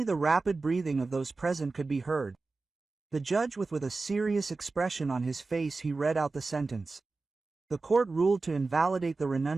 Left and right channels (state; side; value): quieter; left; 3.8 dB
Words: the rapid breathing of those present could be heard. The judge with a serious expression on his face he read out the sentence. The court ruled to invalidate the